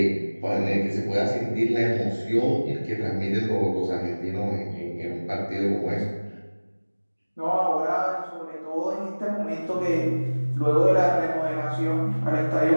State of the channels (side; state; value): both; inverted; correlation -1.00